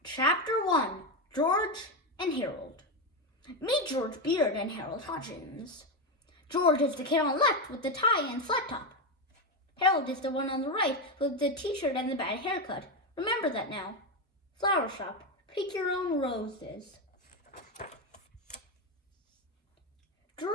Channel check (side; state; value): both; normal; correlation 0.11